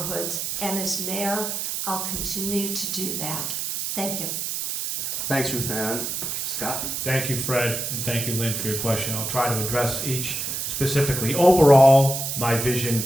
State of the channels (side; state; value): right; noise; hiss, 3 dB below the sound